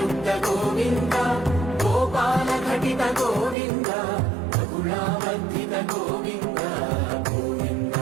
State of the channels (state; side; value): drops out; left; at 3.6 s